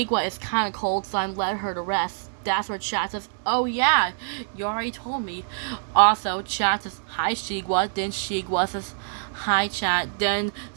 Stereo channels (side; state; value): left; silent; 61 dB below the other